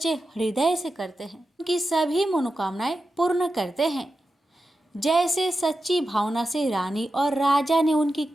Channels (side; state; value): both; normal; correlation 0.91